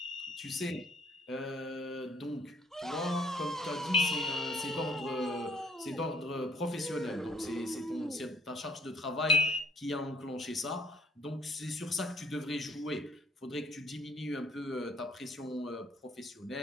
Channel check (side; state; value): both; normal; correlation 0.62